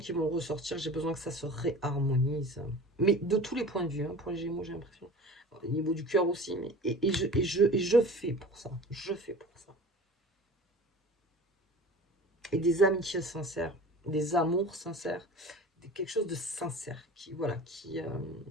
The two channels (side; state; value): both; normal; correlation 0.39